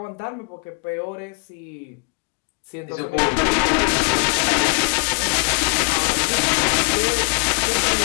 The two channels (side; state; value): right; quieter; 32.8 dB